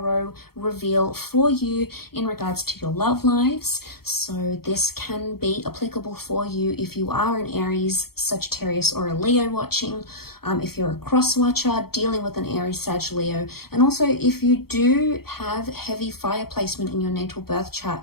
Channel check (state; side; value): late; right; 0.95 ms